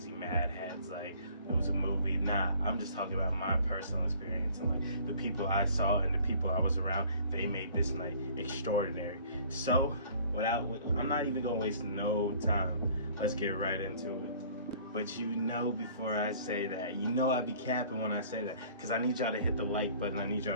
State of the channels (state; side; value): inverted; both; correlation -0.52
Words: mad heads, like it was a movie. Nah, I'm just talking about my personal experience and like the people I saw and the people I was around. They made this night extraordinary. So I'm not even gonna waste no time. Let's get right into it. But you know, before I say that, you know I be capping when I say that, because I need y'all to hit the like button, I need y'all